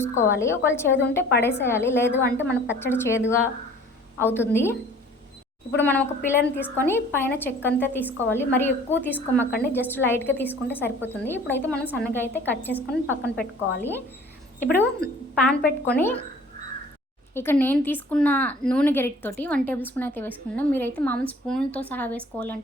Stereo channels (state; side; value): normal; both; correlation 0.50